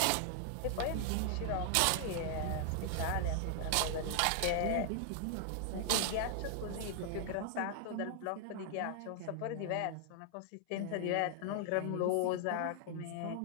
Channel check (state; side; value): different; both; correlation 0.00